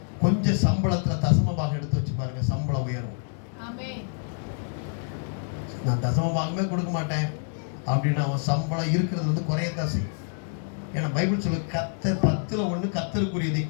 கொஞ்சம் சம்பளத்துல தசமபாகம் எடுத்து வச்சு பாருங்க, சம்பளம் உயரும். நான் தசமபாகமே கொடுக்க மாட்டேன் அப்படின்னு அவன் சம்பளம் இருக்கிறது வந்து குறையத்தான் செய்யும். ஏன்னா பைபிள் சொல்ல கர்த்தர் 10ல் 1 கர்த்தருக்குரியதை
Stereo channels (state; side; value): silent; right; 59 dB below the other